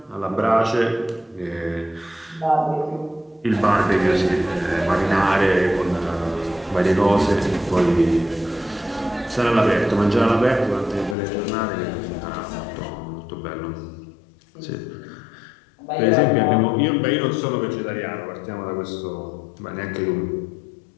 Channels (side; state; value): right; drops out; at 11.2 s